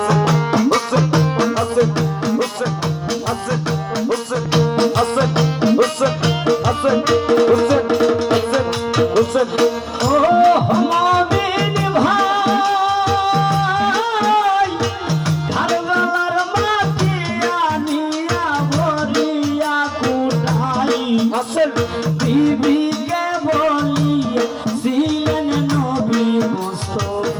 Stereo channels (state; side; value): identical; both; correlation 1.00